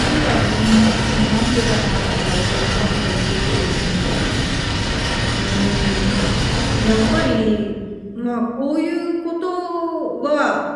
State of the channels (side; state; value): both; identical; correlation 1.00